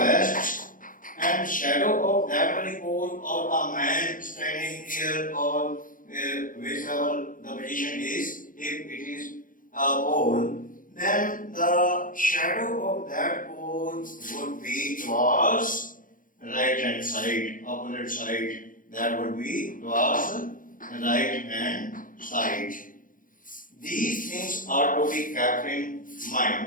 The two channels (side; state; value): right; late; 0.39 ms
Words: and shadow of that very pole or a man standing here or whichever the position is, if it is a pole, then the shadow of that pole would be towards right hand side, opposite side. That would be towards right hand side. These things are to be kept in